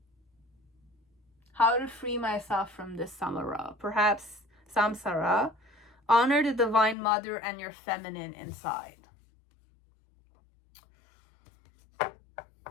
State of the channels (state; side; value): drops out; right; at 7.0 s